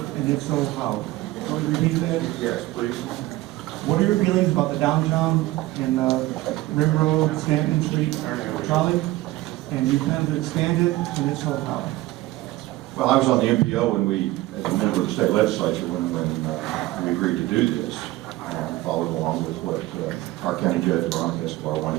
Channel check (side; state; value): left; quieter; 18.0 dB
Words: if so, how? Can you repeat that? Yes, please. What are your feelings about the downtown and Rim Road, Stanton Street trolley? And you plan to expand it, and if so, how? Well, I was on the MPO when we, as a member of the state legislature, when we agreed to do this. I followed along with what our county judge, Veronica Escobar,